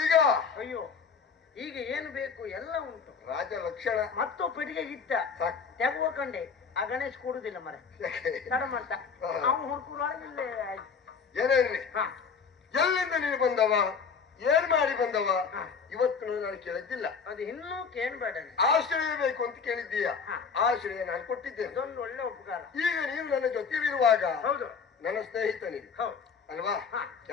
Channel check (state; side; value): quieter; right; 5.8 dB